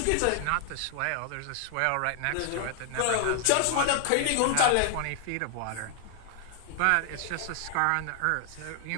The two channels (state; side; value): different; both; correlation 0.00